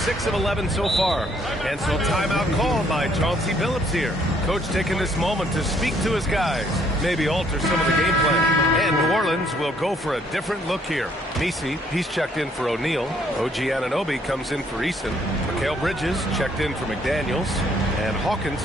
of 11 so far. And so timeout called by Chauncey Billups here. Coach taking this moment to speak to his guys. Maybe alter some of the game plan. And New Orleans will go for a different look here. Messi, he's checked in for O'Neal. OG Anunoby comes in for Eason. Mikal Bridges checked in for McDaniels. And Hawkins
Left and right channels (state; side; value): normal; both; correlation 0.66